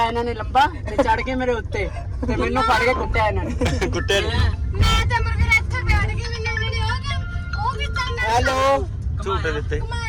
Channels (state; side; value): identical; both; correlation 1.00